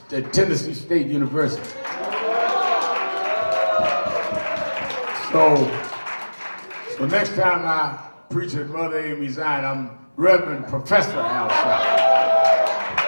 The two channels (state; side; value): inverted; both; correlation -1.00